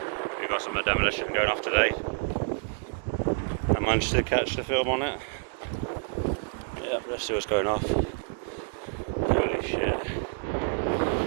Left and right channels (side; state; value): left; silent; digital silence